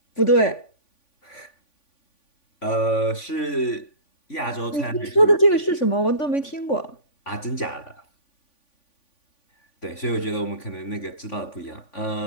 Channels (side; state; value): right; late; 3.5 ms